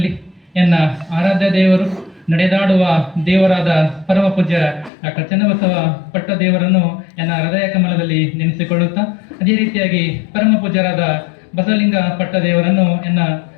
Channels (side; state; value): right; drops out; at 4.9 s